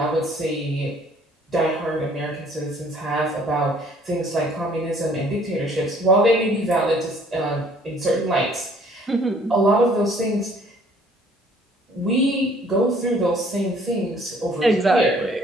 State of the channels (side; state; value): both; normal; correlation 0.58